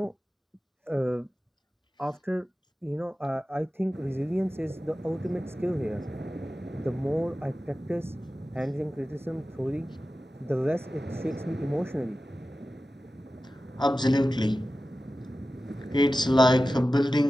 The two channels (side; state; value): both; normal; correlation 0.94